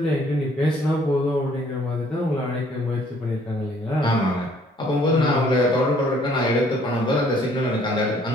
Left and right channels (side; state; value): both; normal; correlation 0.61